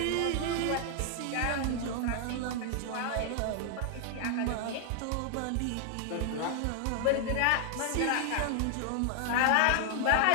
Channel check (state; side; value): different; both; correlation 0.00